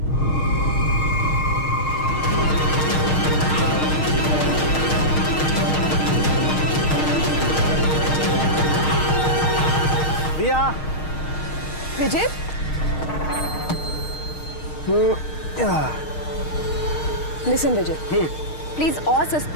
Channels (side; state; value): right; late; 6.5 ms